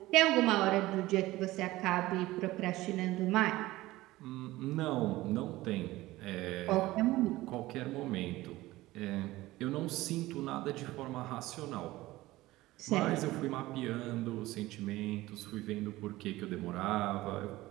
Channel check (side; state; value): left; quieter; 17.9 dB